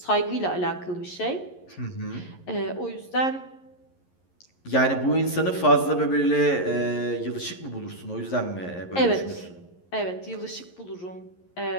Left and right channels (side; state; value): right; late; 11 ms